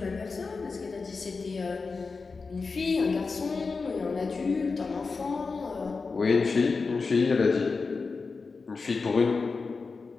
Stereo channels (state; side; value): quieter; right; 4.4 dB